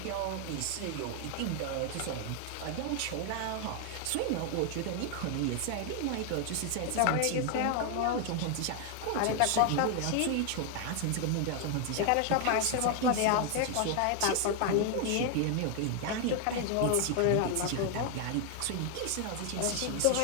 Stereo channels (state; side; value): different; both; correlation 0.00